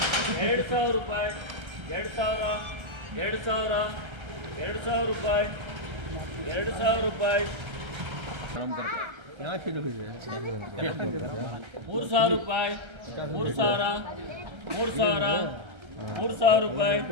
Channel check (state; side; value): late; left; 1.3 ms